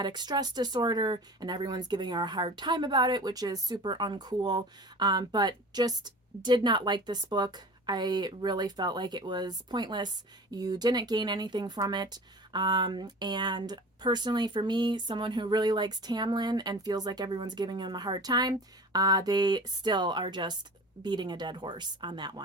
stress disorder, and everyone's giving her a hard time about it, which is super uncool. But just did not like this book. I really felt like it was pointless. You didn't gain anything from it. And personally, for me, someone who really likes Tamlin and feels like everyone's giving him a hard time, they still are just beating a dead horse on that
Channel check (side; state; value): both; normal; correlation 0.38